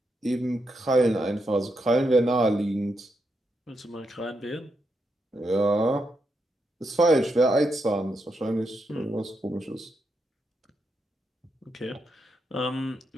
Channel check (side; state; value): both; normal; correlation 0.83